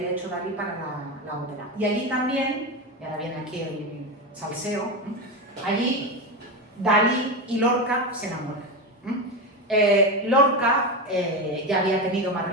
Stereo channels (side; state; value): both; normal; correlation 0.16